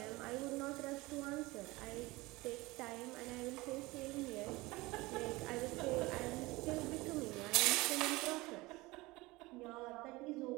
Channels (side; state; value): left; quieter; 21.7 dB